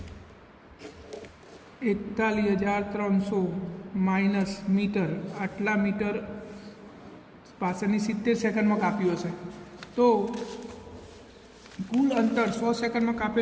41,300 માઇનસ મીટર. આટલા મીટર પાછળની 70 સેકન્ડમાં કાપ્યું હશે. તો કુલ અંતર 100 સેકન્ડમાં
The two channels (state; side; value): identical; both; correlation 1.00